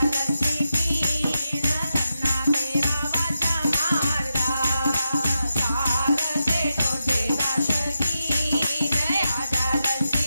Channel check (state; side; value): inverted; both; correlation -0.88